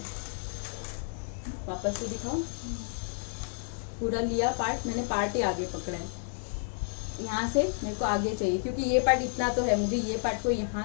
वापस से दिखाओ, पूरा लिया पार्ट, मैंने पार्ट ही आगे पकड़ा है। यहाँ से मेरे को आगे चाहिए क्योंकि ये पार्ट इतना तो है, मुझे ये पार्ट को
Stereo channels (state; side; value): silent; right; 56 dB below the other